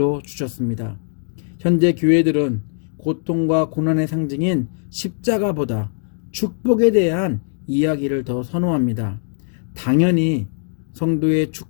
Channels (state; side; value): silent; right; digital silence